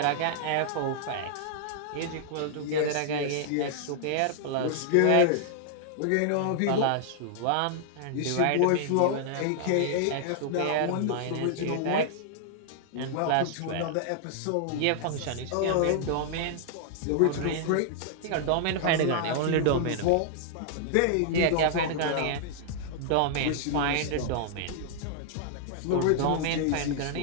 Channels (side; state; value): both; different; correlation -0.01